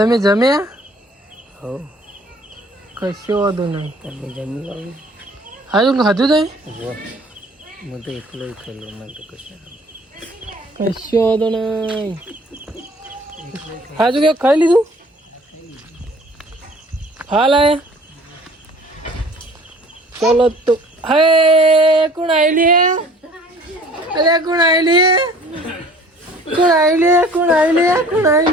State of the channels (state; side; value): normal; both; correlation 0.51